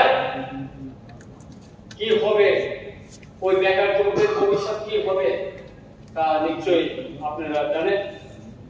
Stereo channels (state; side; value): identical; both; correlation 1.00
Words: কি হবে, ওই বেকার যুবকের ভবিষ্যৎ কি হবে তা নিশ্চয়ই আপনারা জানেন।